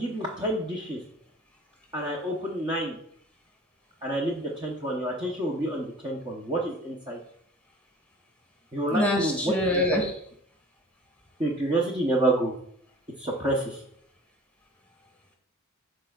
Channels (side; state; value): both; normal; correlation 0.46